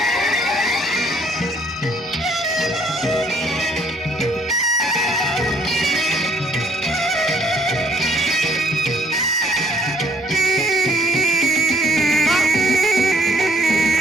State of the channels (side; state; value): both; normal; correlation 0.64